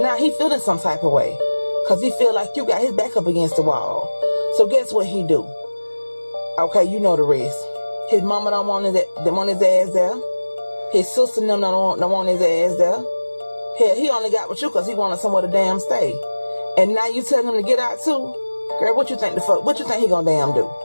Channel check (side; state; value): both; inverted; correlation -1.00